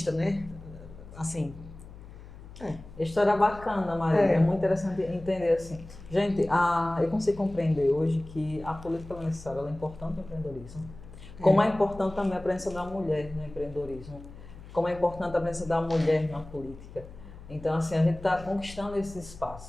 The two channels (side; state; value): left; noise; hum, 16 dB below the sound